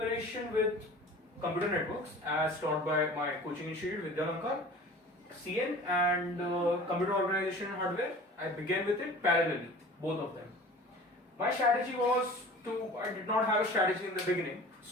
with computer networks as taught by my coaching institute Vidyalankar, CN, and computer organization and hardware. I began with it parallelly, both of them. My strategy was I did not have a strategy in the beginning,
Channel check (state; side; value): normal; both; correlation 0.42